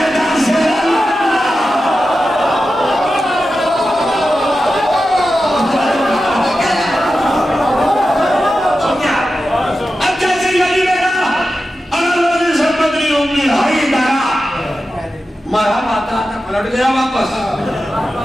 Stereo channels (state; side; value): normal; both; correlation 0.92